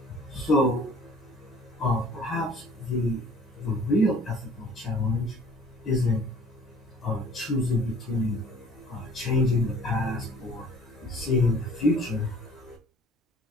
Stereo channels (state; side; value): normal; both; correlation 0.51